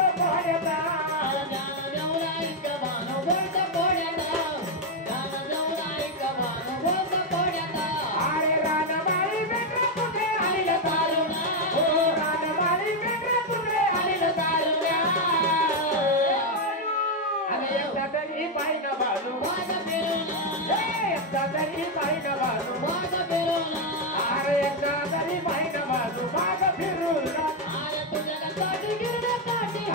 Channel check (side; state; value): both; normal; correlation 0.03